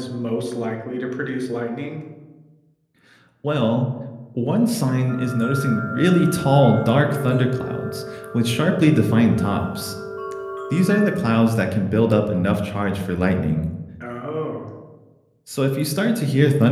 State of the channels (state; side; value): identical; both; correlation 1.00